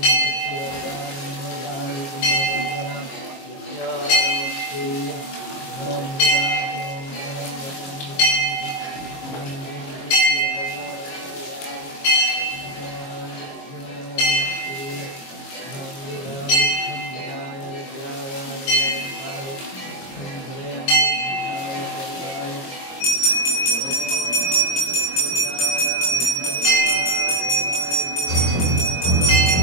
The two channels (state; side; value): late; right; 22 ms